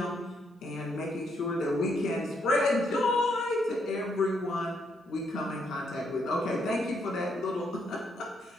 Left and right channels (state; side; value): normal; both; correlation 0.75